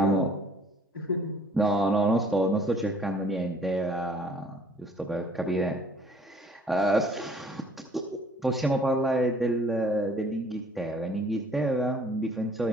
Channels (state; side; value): normal; both; correlation 0.57